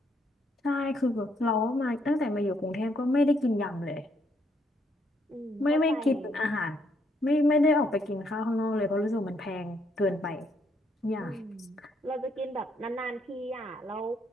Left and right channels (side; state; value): both; normal; correlation 0.72